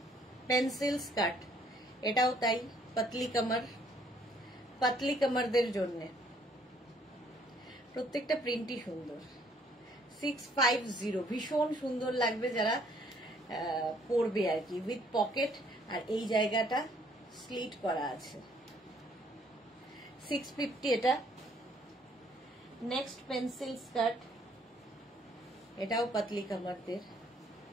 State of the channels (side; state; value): both; normal; correlation 0.64